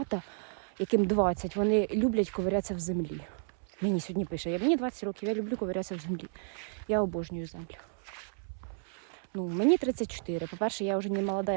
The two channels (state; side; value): silent; left; 56 dB below the other